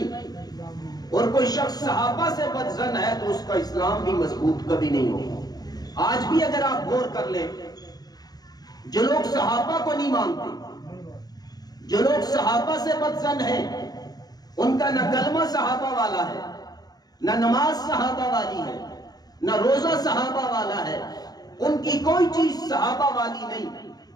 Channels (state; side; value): late; right; 0.19 ms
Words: اور کوئی شخص صحابہ سے بدظن ہے تو اس کا اسلام بھی مضبوط کبھی نہیں ہوگا۔ آج بھی اگر آپ غور کر لیں، جو لوگ صحابہ کو نہیں مانتے، جو لوگ صحابہ سے بدظن ہیں، ان کا نہ کلمہ صحابہ والا ہے، نہ نماز صحابہ والی ہے، نہ روزہ صحابہ والا ہے، ان کی کوئی چیز صحابہ والی نہیں۔